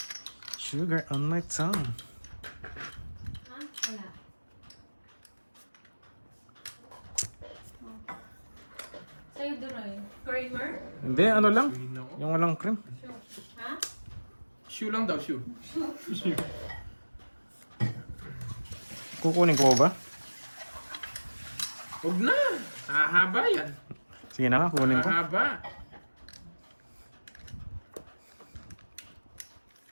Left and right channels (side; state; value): both; inverted; correlation -1.00